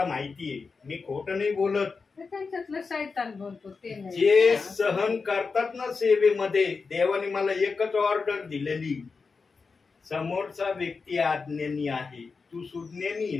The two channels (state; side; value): quieter; right; 4.7 dB